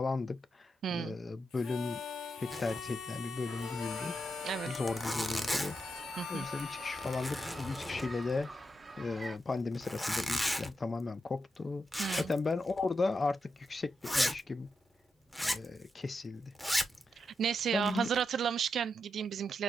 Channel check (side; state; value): both; normal; correlation 0.85